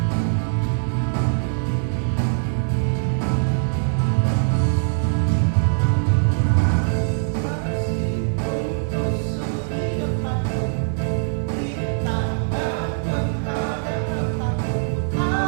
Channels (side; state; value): left; silent; digital silence